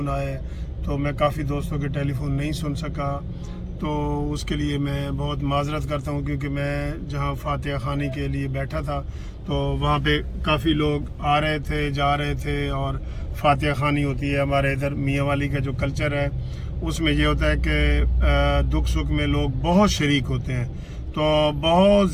आए। तो मैं काफ़ी दोस्तों के टेलीफोन नहीं सुन सका, तो उसके लिए मैं बहुत माजरत करता हूँ, क्योंकि मैं जहाँ फातिहा खानी के लिए बैठा था तो वहाँ पे काफ़ी लोग आ रहे थे, जा रहे थे। और फातिहा खानी होती है हमारे इधर मियाँ वाली का जो कल्चर है, उसमें ये होता है कि दुख सुख में लोग बहुत शरीक होते हैं। तो बहुत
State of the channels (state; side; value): identical; both; correlation 1.00